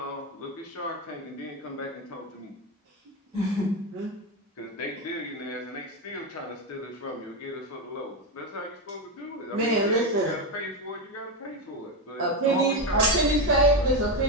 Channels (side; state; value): both; normal; correlation 0.11